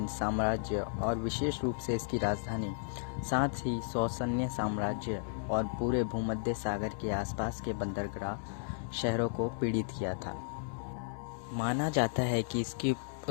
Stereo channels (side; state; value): right; silent; digital silence